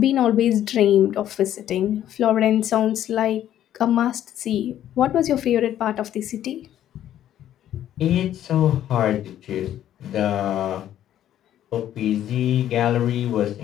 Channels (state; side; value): quieter; right; 11.5 dB